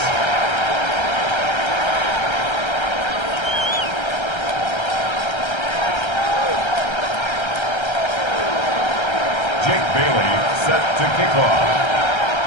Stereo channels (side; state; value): right; late; 1.3 ms